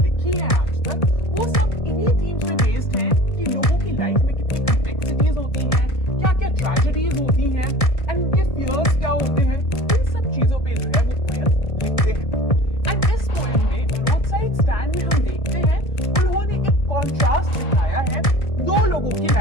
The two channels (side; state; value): right; late; 1.7 ms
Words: हैं आज तक वो सब इन्हीं थीम्स पे बेस्ड हैं कि लोगों की लाइफ में कितनी कॉम्प्लेक्सिटीज होती हैं, क्या क्या ट्रेजेडीज होती हैं एंड उनके फियर्स क्या होते हैं, इन सब चीजों पे जो है वो पोएम लिखते हैं। एंड इस पोएम में रोड साइड स्टैंड में हम देखते हैं उन्होंने एक कॉन्ट्रास्ट दिखाया है दो लोगों की